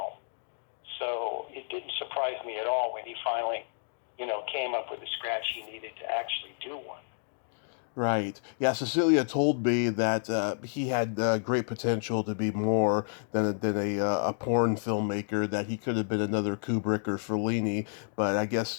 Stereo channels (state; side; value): silent; right; digital silence